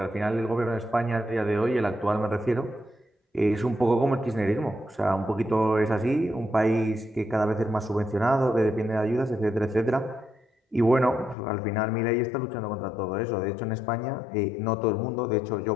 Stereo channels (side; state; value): right; drops out; at 11.4 s